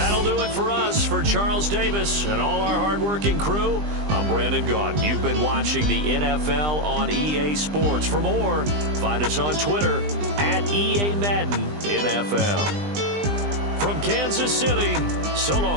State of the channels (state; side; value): late; left; 20 ms